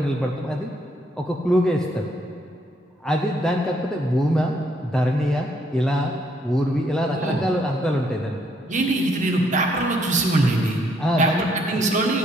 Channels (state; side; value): normal; both; correlation 0.70